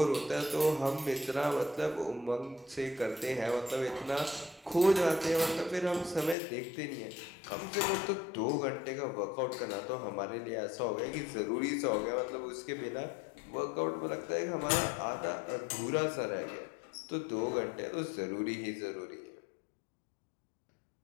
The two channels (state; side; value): drops out; right; at 6.4 s